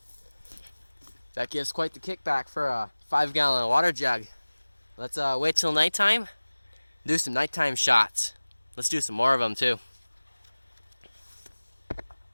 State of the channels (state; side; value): inverted; both; correlation -1.00